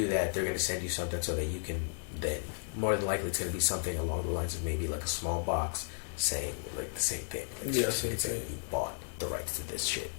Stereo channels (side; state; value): right; silent; digital silence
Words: that, they're going to send you something so that you can then, more than likely, it's going to be something along the lines of maybe like a small box saying like the same thing. Like, it's saying you bought the rights to this shit.